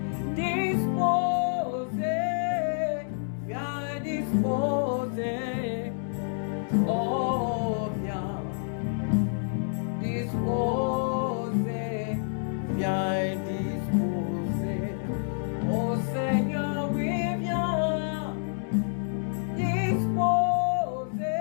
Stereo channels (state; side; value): silent; right; 59 dB below the other